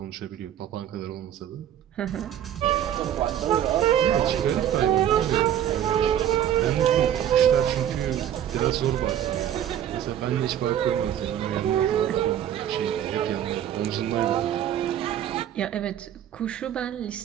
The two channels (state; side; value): quieter; left; 10.6 dB